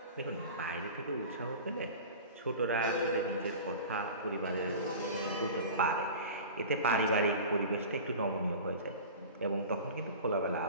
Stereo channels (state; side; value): inverted; both; correlation -0.36